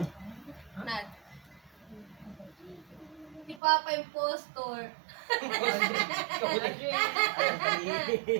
Nat. Si Papa Impostor.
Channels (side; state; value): left; drops out; at 3.6 s